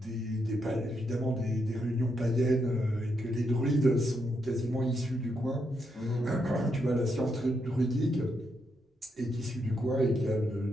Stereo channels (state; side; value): normal; both; correlation 0.80